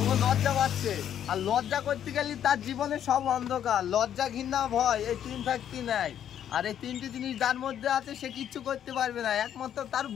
ও লজ্জা পাচ্ছে, আর লজ্জা করতে গেলে তার জীবনে সব অন্ধকার। লজ্জা, ঘৃণা, ভয়, এই 3 শক্তি নেয়। আর এই 3টি জিনিস যার মধ্যে আছে সে কিচ্ছু করতে পারবে না, একমাত্র তার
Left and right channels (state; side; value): quieter; right; 9.9 dB